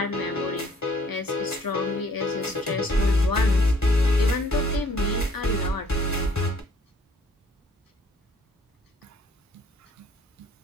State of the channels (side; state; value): both; normal; correlation 0.61